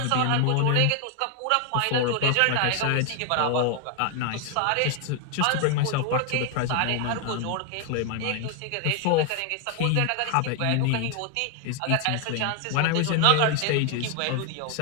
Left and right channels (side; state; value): both; different; correlation 0.00